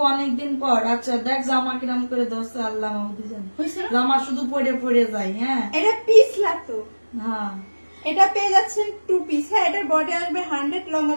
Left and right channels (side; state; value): both; inverted; correlation -1.00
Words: অনেকদিন পর। আচ্ছা দেখ জামা কিরাম করে দোস্ত, আল্লাহ মাহমুদি জানে হইছে না? জামা শুধু পরে পরে যায়। হ্যাঁ এটা পিস লাগতো। হ্যাঁ এটা পেয়ে যাচ্ছেন 2 পিস। হ্যাঁ এটার বডি আসবে 100, লং